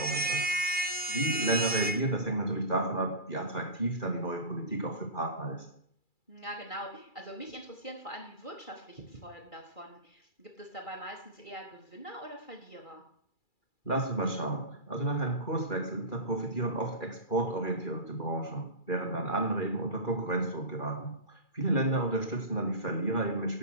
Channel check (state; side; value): late; right; 2.3 ms